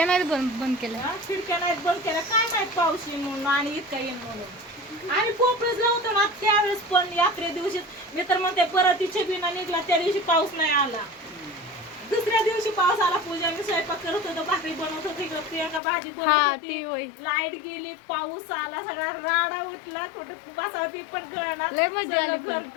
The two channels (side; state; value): right; drops out; at 15.8 s